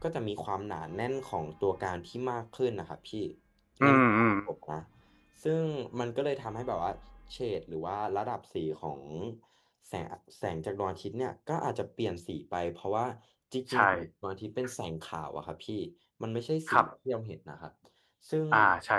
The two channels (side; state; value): both; identical; correlation 1.00